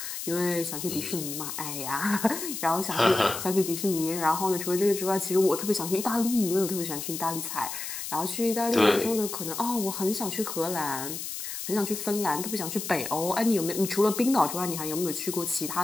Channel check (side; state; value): left; noise; hiss, 6 dB below the sound